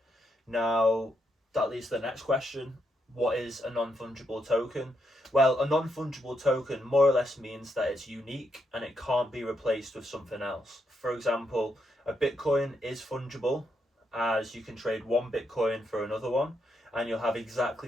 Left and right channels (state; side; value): normal; both; correlation 0.80